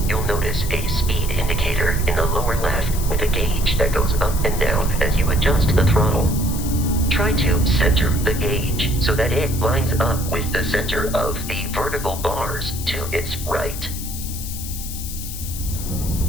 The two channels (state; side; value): noise; left; hiss, 9 dB below the sound